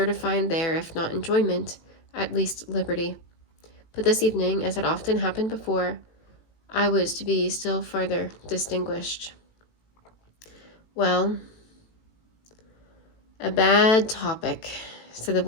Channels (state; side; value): late; right; 18 ms